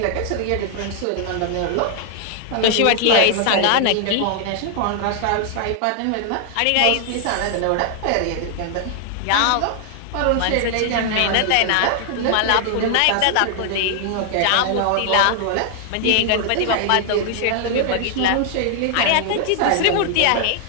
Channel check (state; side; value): different; both; correlation 0.00